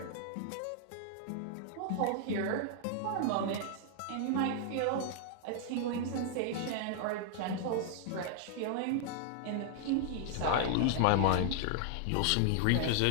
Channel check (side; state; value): both; different; correlation -0.01